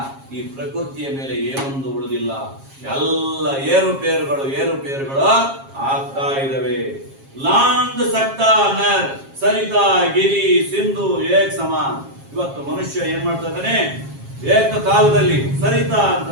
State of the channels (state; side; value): late; left; 7.4 ms